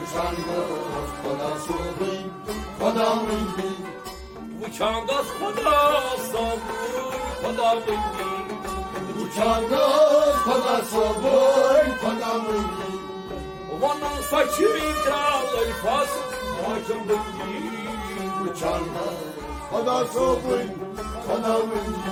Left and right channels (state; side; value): identical; both; correlation 1.00